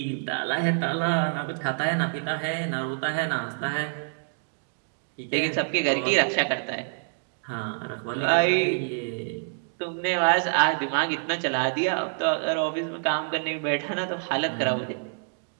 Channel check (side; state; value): left; silent; digital silence